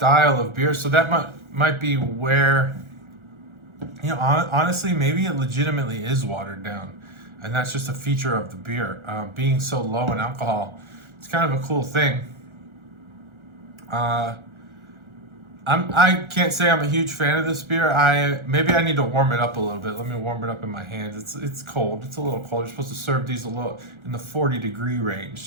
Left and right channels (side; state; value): left; late; 1.4 ms